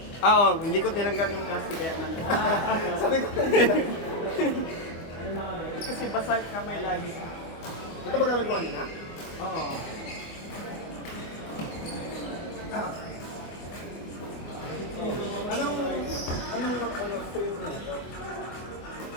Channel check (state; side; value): late; right; 24 ms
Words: Oo, hindi ko tinanggal yung plastic kaya man. Sabi ko Kasi basa kamay lagi. ito ba gamit ko kanina? Oo. Anong spring na ito?